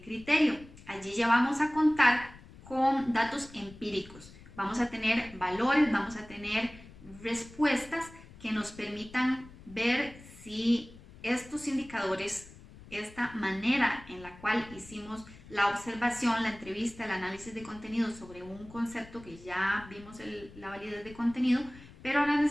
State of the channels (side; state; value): left; noise; rumble, 20 dB below the sound